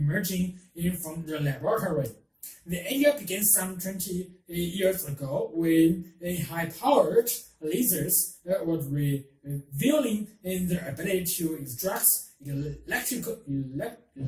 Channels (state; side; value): identical; both; correlation 1.00